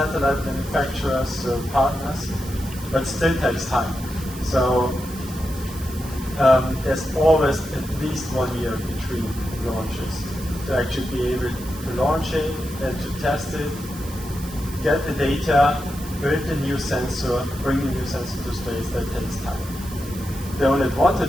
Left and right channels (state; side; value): noise; right; hiss, 15 dB below the sound